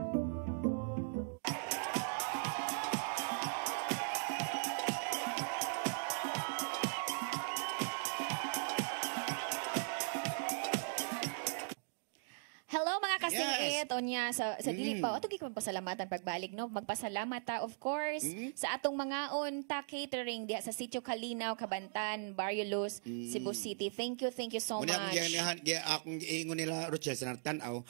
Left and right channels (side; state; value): left; silent; digital silence